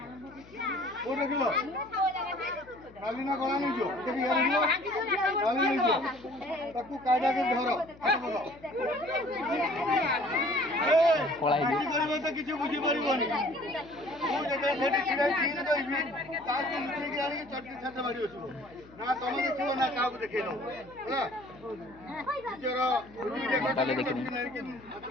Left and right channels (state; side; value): noise; left; hum, 23 dB below the sound